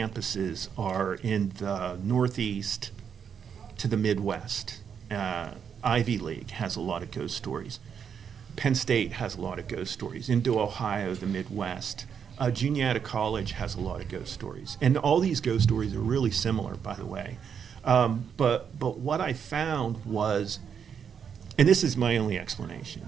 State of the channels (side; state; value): left; quieter; 7.4 dB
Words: are in the Northeast to the Midwest. Ivy League has a lot of ghost stories. Penn State has a lot of ghost stories. Into Ohio, the Midwest. Juniata College has a lot of ghost stories. And all these ghost stories are really similar, by the way. But what I found was, and this is my only